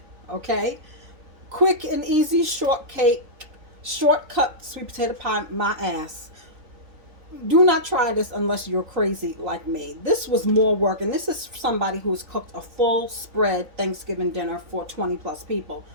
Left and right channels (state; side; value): late; left; 3.9 ms